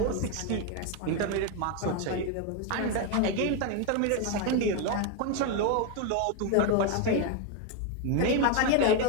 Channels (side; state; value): both; different; correlation 0.02